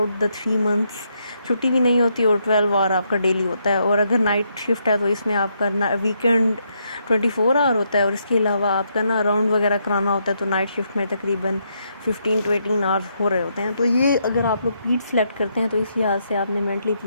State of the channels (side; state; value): both; inverted; correlation -0.77